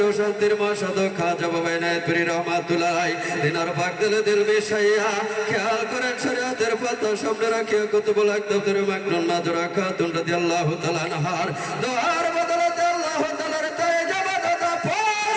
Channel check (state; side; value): identical; both; correlation 1.00